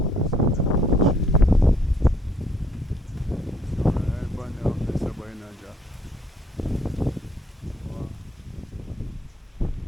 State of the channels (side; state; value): both; normal; correlation 0.65